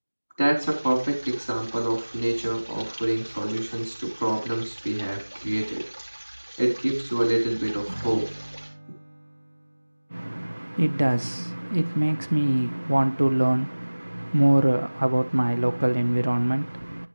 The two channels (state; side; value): inverted; both; correlation -1.00